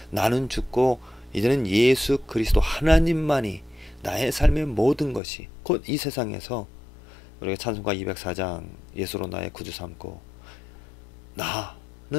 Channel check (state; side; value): drops out; right; at 5.2 s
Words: 나는 죽고 이제는 예수 그리스도 하나님만이 나의 삶의 모든 것이 곧 이 세상에서 우리가 찬송가 204장 예수로 나의 구주 삼고